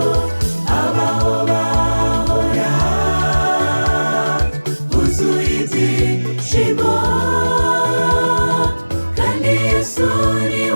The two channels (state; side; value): inverted; both; correlation -1.00